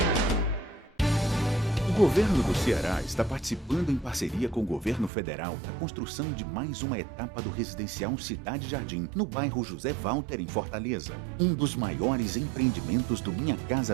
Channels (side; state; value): left; drops out; at 5.1 s